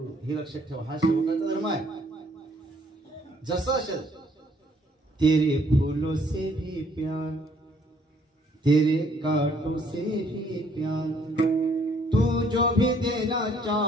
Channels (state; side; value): normal; both; correlation 0.64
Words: हे लक्षात ठेवा, हा सेवकाचा धर्म आहे. जसं असेल, तेरे फूलों से भी प्यार, तेरे कांटों से भी प्यार, तू जो भी देना